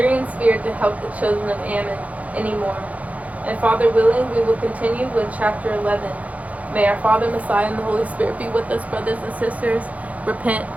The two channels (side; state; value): left; late; 0.069 ms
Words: feared to help the children of Ammon anymore. And Father willing, we will continue with chapter 11. May our Father, Messiah, and the Holy Spirit be with us, brothers and sisters. Repent,